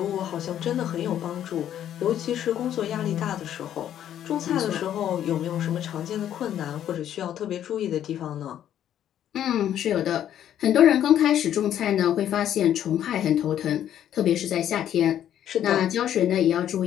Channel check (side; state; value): right; quieter; 10.7 dB